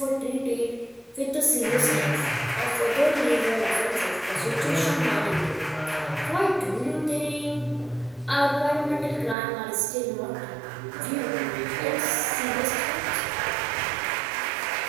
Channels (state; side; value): drops out; left; at 9.3 s